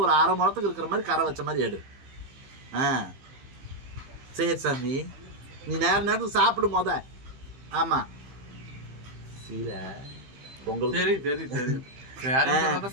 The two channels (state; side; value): late; left; 15 ms